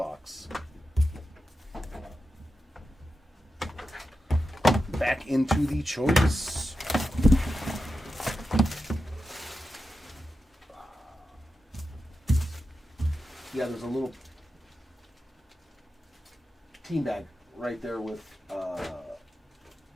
Back into the choice. Yeah, there's a little team bag right there with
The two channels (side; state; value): both; normal; correlation 0.90